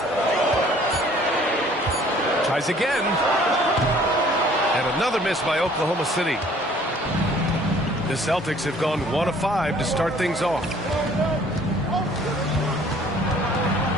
Tries again. And another miss by Oklahoma City. The Celtics have gone 1 of 5 to start things off.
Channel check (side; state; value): both; normal; correlation 0.56